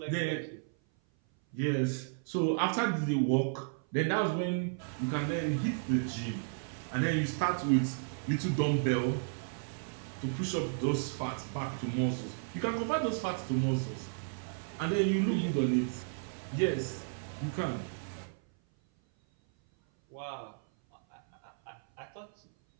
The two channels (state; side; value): silent; left; 55 dB below the other